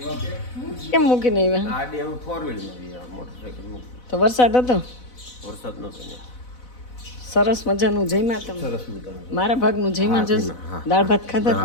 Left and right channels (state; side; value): late; right; 4.0 ms